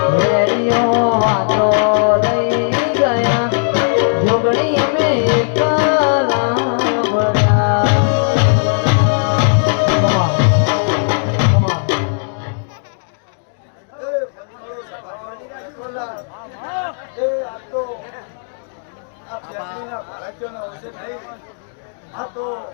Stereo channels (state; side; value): silent; right; digital silence